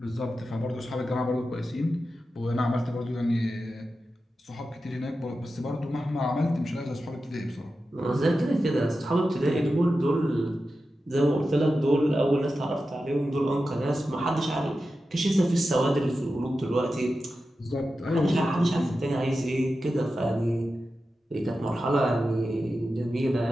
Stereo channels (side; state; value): both; normal; correlation 0.91